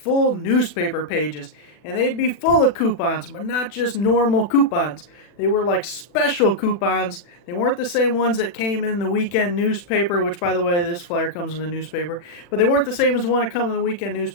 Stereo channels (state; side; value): late; right; 40 ms